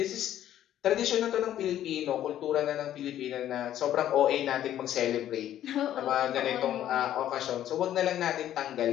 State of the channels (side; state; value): right; quieter; 11.7 dB